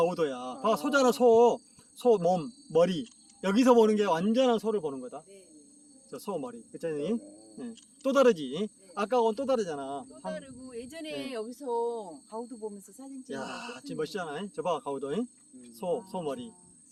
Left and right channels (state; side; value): identical; both; correlation 1.00